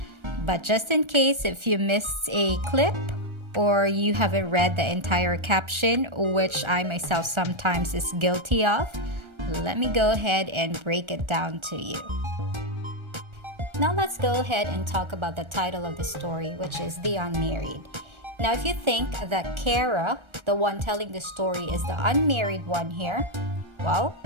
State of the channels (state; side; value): late; left; 1.3 ms